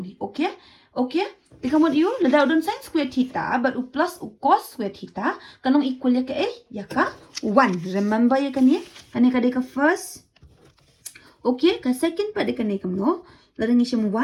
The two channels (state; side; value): identical; both; correlation 1.00